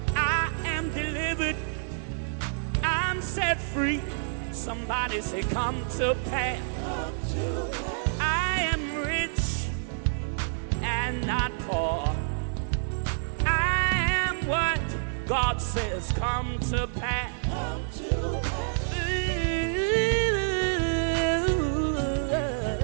I am delivered. I'm set free. Somebody say, come to pass. I am rich and not poor. I am what God says, come to pass.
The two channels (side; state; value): left; silent; digital silence